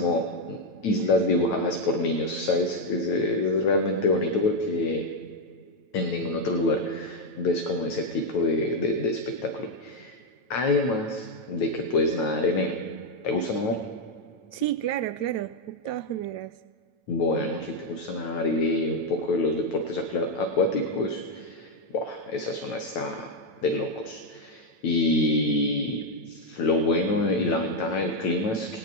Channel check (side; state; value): right; late; 9.1 ms